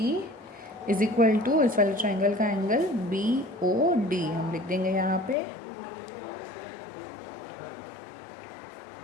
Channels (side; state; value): right; drops out; at 5.4 s